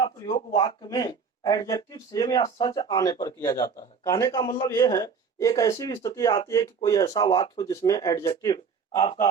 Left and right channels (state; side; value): quieter; left; 5.8 dB